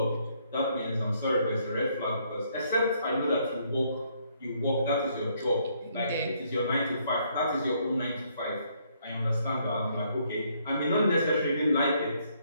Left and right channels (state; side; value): inverted; both; correlation -0.69